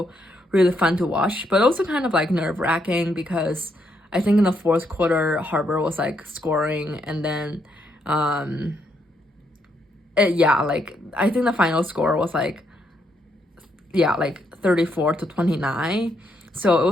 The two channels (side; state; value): both; normal; correlation 0.76